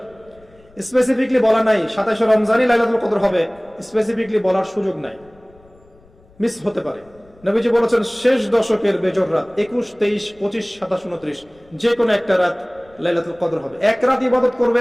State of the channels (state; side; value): noise; left; rumble, 29 dB below the sound